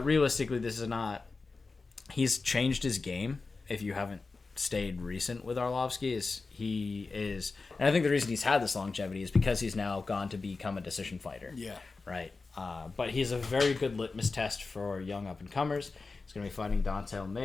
realistically, this is not... He's changed his game, if you haven't stayed recent with Arlovsky, and I think the reason he's had this longevity is because he's now gone to become a decision fighter. Yeah. Right? But he's a very good litmus test for young up-and-comers. He's going to be fighting Dontel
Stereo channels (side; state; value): right; quieter; 4.0 dB